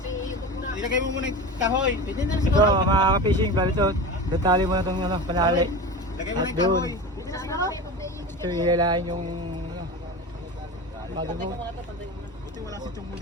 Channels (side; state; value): both; normal; correlation 0.28